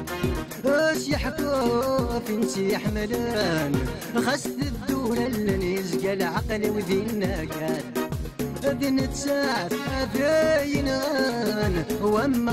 يحكوا فين يحملان خاصة الدولة اللي يزقى العقل وذينا كان ذن تساعد ذاين غان وما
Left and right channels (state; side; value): identical; both; correlation 1.00